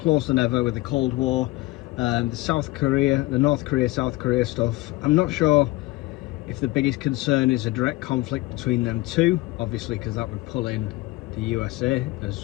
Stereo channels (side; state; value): right; quieter; 20.0 dB